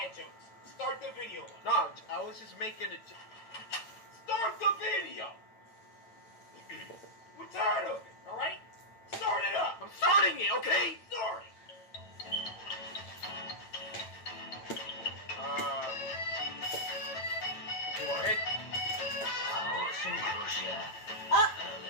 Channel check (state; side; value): late; right; 8.9 ms